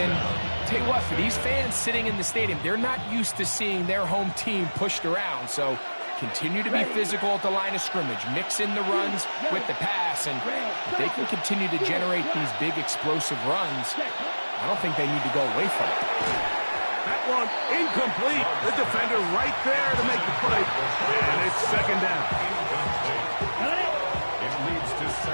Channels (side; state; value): both; inverted; correlation -1.00